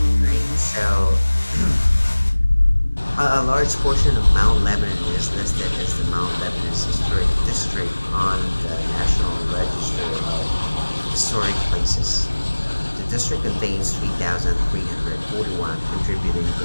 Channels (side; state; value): both; inverted; correlation -1.00